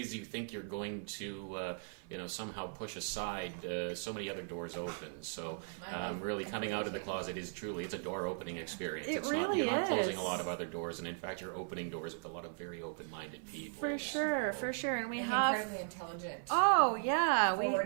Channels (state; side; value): silent; left; 53 dB below the other